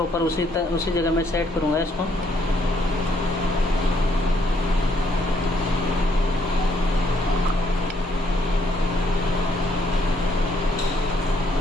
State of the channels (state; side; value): normal; both; correlation 0.69